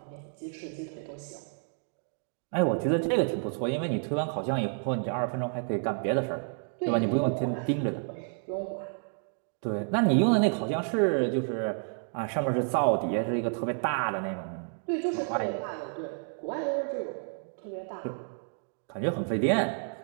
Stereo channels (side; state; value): left; silent; 55 dB below the other